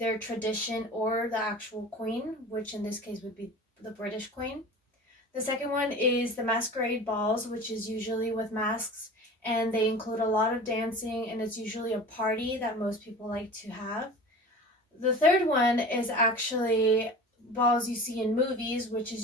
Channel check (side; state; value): both; normal; correlation 0.37